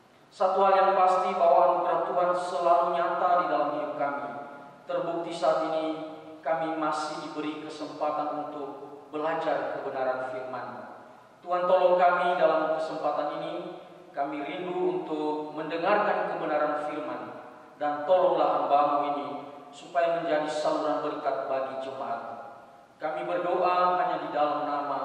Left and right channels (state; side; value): identical; both; correlation 1.00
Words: Satu hal yang pasti bahwa anugerah Tuhan selalu nyata di dalam hidup kami. Terbukti saat ini kami masih diberi kesempatan untuk belajar kebenaran firman. Tuhan tolong kami dalam kesempatan ini. Kami rindu untuk mendengarkan kebenaran firman, dan tolonglah hamba-Mu ini supaya menjadi saluran berkat bagi jemaat. Kami berdoa hanya di dalam